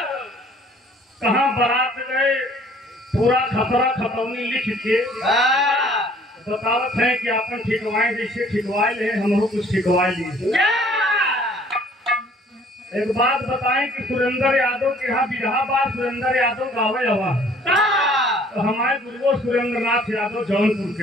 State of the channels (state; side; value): normal; both; correlation 0.56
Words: कहाँ बारात गए पूरा खतरा खतौनी लिख के बतावत है कि अपन ठिकवाए जैसे ठिकवाए ले हम कुछ ठिकवाए लिए। एक बात बताएं कि सुरेंद्र यादव के यहाँ बिरहा बार सुरेंद्र यादव गावे हवा तो हमारे गुरुओं सुरेंद्र नाथ यादव जौनपुर